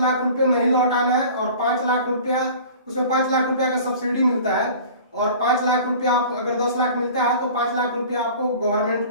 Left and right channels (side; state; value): both; inverted; correlation -0.43